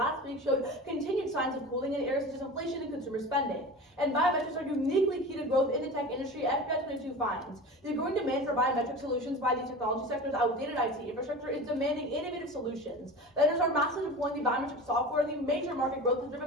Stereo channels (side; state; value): both; normal; correlation 0.33